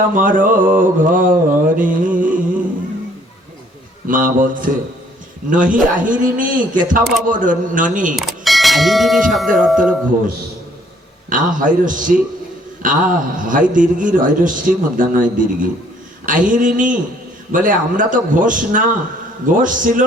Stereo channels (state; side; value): normal; both; correlation 0.62